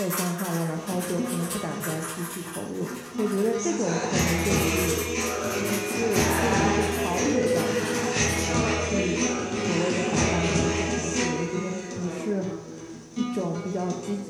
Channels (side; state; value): both; identical; correlation 1.00